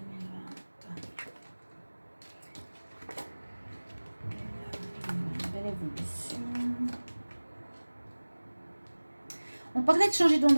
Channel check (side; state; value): both; inverted; correlation -1.00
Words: On parlait de changer